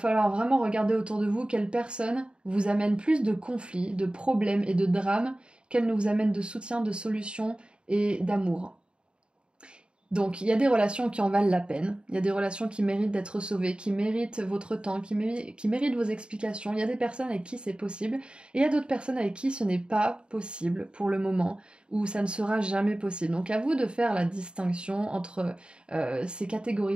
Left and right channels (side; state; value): left; late; 0.053 ms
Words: vraiment regarder autour de vous quelle personne vous amène plus de conflits, de problèmes et de drames qu'elle ne vous amène de soutien, de solutions et d'amour. Donc il y a des relations qui en valent la peine, il y a des relations qui méritent d'être sauvées, qui méritent votre temps, qui méritent vos explications. Il y a des personnes avec qui c'est possible, et il y a d'autres personnes avec qui ce n'est pas possible pour le moment, ou ça ne sera jamais possible. Donc à vous de faire la distinction entre ces catégories